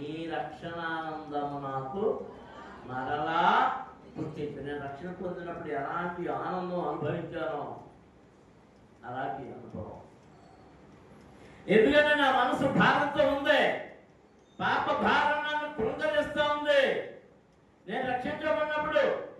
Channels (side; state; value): both; identical; correlation 1.00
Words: రక్షణానందము నాకు మరలా పుట్టించు. నేను రక్షణ పొందినప్పుడు ఎలాంటి ఆనందం అనుభవించానో అలాంటి అనుభవం. ఎందుకంటే నా మనసు భారంతో ఉంది, పాప భారం నన్ను కృంగరిస్తూ ఉంది. నేను రక్షించబడినప్పుడు